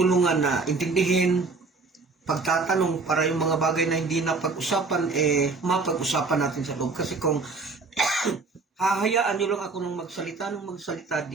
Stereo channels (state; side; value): quieter; left; 4.0 dB